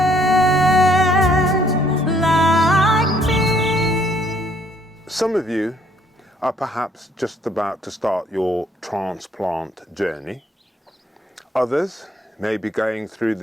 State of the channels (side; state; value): both; normal; correlation 0.65